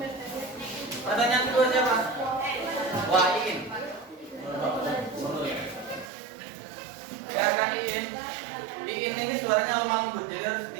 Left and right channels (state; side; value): drops out; left; at 6.1 s